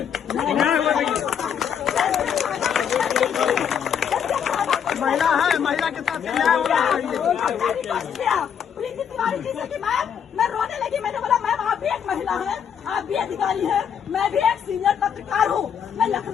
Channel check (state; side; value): quieter; right; 8.0 dB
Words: महिला है, महिला के साथ न्याय होना चाहिए। प्रीति तिवारी जी से कि मैं रोने लगी। मैंने बोला मैम आप भी एक महिला हैं, आप भी अधिकारी हैं, मैं भी एक सीनियर पत्रकार हूँ, मैं